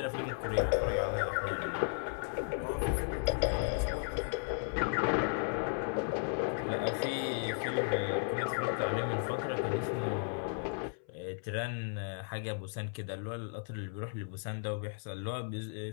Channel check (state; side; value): silent; right; 54 dB below the other